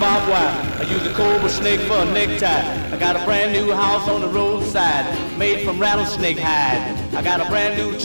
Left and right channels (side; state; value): both; inverted; correlation -1.00